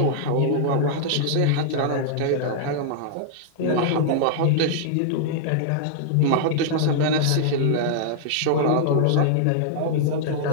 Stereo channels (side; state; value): both; different; correlation -0.01